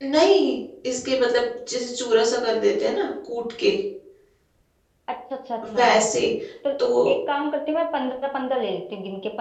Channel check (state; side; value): identical; both; correlation 1.00